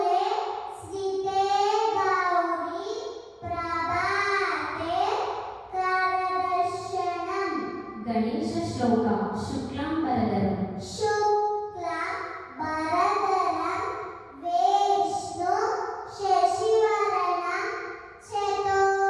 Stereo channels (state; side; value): identical; both; correlation 1.00